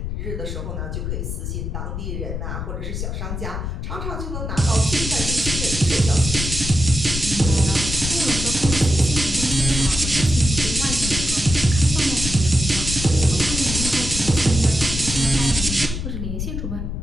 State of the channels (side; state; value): left; noise; rumble, 4 dB below the sound